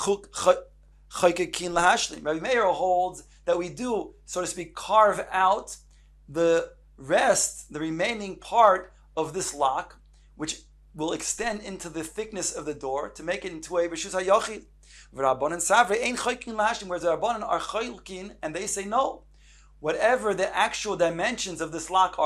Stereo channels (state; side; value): identical; both; correlation 1.00